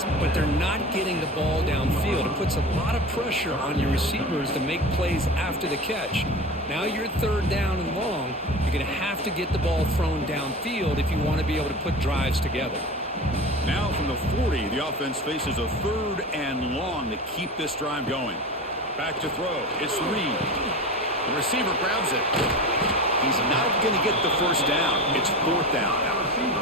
but they're not getting the ball downfield. It puts a lot of pressure on your receivers to make plays after the catch. Now you're third down and long. You're going to have to get the ball thrown downfield if you want to be able to put drives together. Now from the 40, the offense faces a third and long to keep this drive going. Back to throw. It's Reed. The receiver grabs it. He's not going to get the first down. It's fourth down.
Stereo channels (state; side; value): normal; both; correlation 0.31